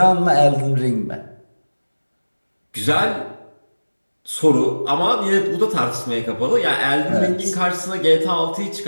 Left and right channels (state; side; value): inverted; both; correlation -1.00